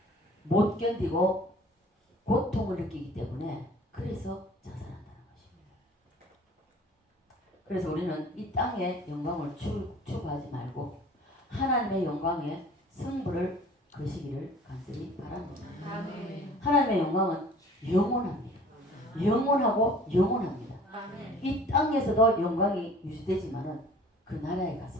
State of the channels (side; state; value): both; normal; correlation 0.49